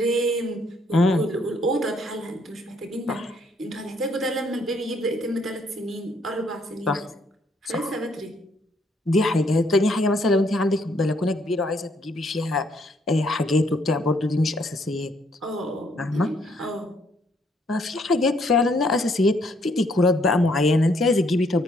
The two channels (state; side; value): normal; both; correlation 0.69